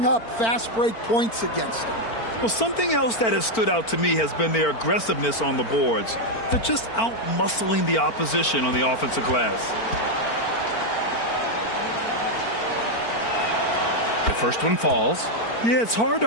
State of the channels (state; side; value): late; right; 4.4 ms